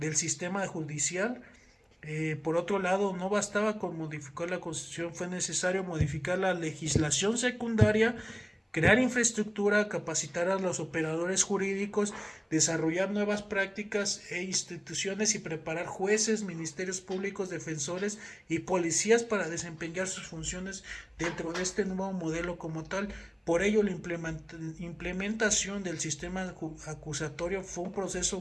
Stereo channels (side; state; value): both; identical; correlation 1.00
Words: sistema judicial. Por otro lado, no bastaba con modificar la Constitución, fue necesario modificar la legislación secundaria, crear infraestructura, capacitar a los operadores jurídicos, desarrollar nuevas prácticas e instituciones y preparar jueces, ministerios públicos, defensores y policías para desempeñar sus funciones dentro de este nuevo modelo como tal. Por ello, la implementación del sistema acusatorio fue un proceso